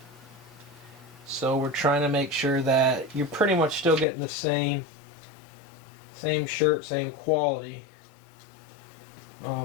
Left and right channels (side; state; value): right; drops out; at 4.0 s